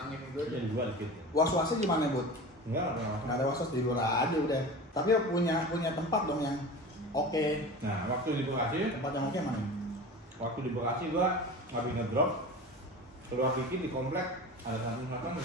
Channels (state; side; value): normal; both; correlation 0.33